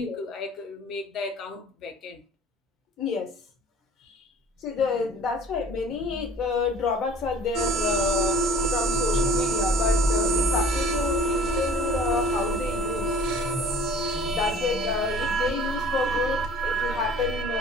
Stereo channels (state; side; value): normal; both; correlation 0.48